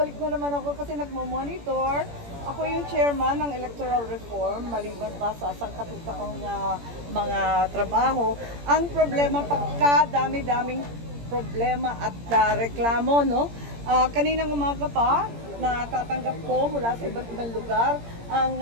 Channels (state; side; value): late; left; 17 ms